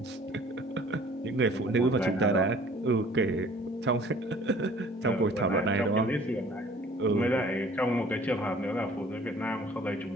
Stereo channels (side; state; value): both; normal; correlation 0.51